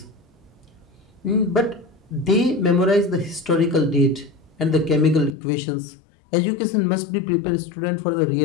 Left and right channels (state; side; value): drops out; right; at 5.3 s